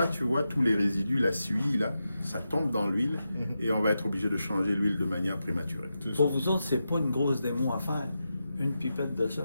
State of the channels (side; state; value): both; inverted; correlation -0.89